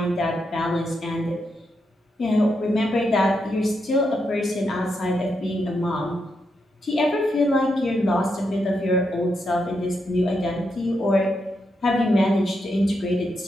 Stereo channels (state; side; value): normal; both; correlation 0.83